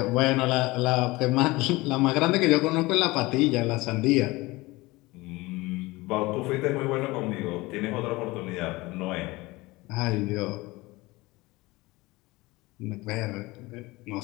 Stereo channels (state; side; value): quieter; right; 21.4 dB